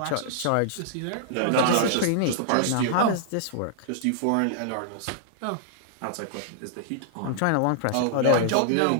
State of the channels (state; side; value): different; both; correlation -0.01